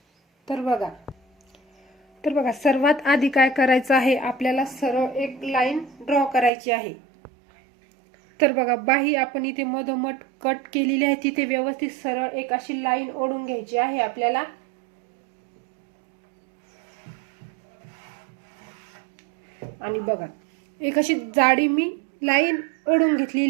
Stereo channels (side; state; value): left; drops out; at 6.5 s